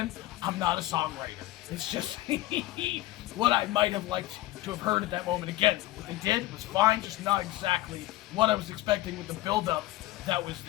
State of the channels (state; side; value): quieter; right; 16.9 dB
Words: I'm not a songwriter. It's just what I might have liked to have heard at that moment. Again, what they did was fine, just not exactly what I was expecting with the build-up that was